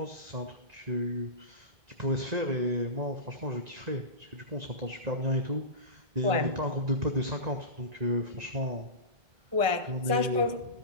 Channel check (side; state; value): left; late; 1.4 ms